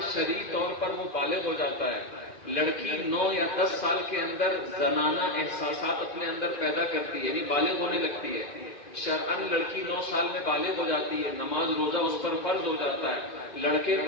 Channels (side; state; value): right; late; 2.4 ms